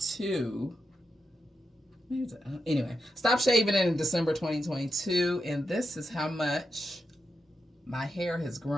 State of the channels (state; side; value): normal; both; correlation 0.86